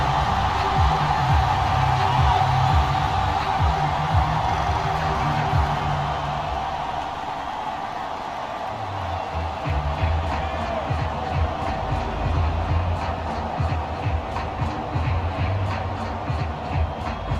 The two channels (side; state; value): both; identical; correlation 1.00